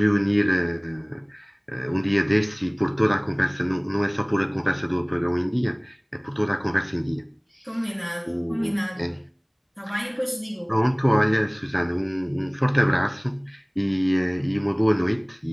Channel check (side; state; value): both; identical; correlation 1.00